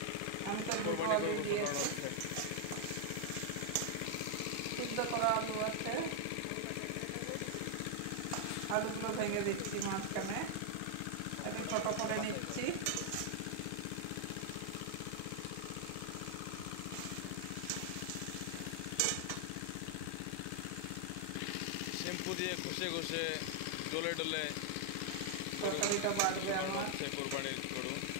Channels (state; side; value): different; both; correlation 0.00